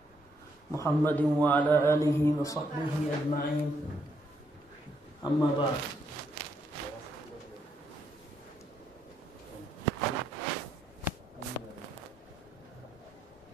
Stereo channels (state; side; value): normal; both; correlation 0.75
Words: محمد وعلى آله وصحبه أجمعين أما بعد